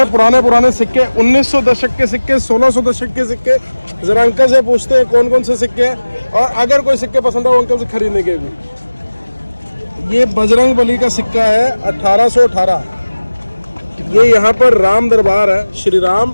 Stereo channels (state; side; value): inverted; both; correlation -1.00